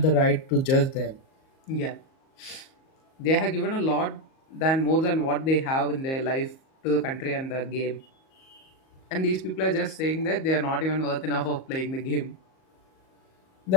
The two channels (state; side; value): late; right; 38 ms